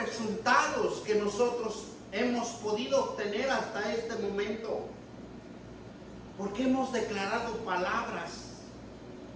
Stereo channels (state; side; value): identical; both; correlation 1.00